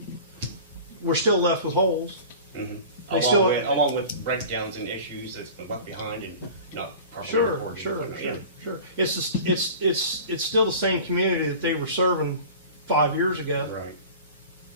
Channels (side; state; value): both; inverted; correlation -0.39